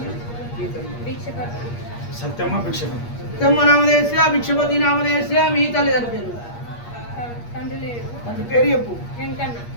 సత్యమ్మ నామదేశ్య, భిక్షపతి నామదేశ్య. మీ తల్లిదండ్రి పేరు తండ్రి పేరు చెప్పు.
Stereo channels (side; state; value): right; late; 8.5 ms